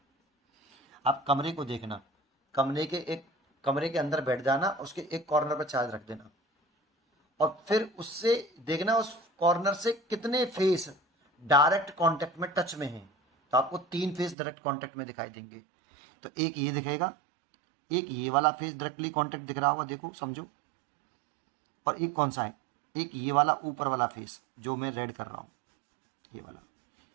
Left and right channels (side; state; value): left; drops out; at 14.4 s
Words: आप कमरे को देखना, कमरे के अंदर बैठ जाना, उसके एक कॉर्नर पर चार्ज रख देना और फिर उससे देखना उस कॉर्नर से कितने फेस डायरेक्ट कांटेक्ट में टच में हैं। तो आपको 3 फेस डायरेक्ट कांटेक्ट में दिखाई देंगे। तो एक ये दिखेगा, एक ये वाला फेस डायरेक्टली कांटेक्ट दिख रहा होगा, देखो समझो, और एक कौन सा है, एक ये वाला ऊपर वाला फेस जो मैं रेड कर रहा हूँ, ये वाला।